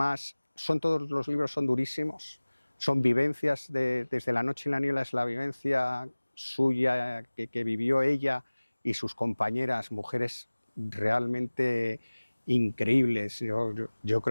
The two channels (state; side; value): inverted; both; correlation -1.00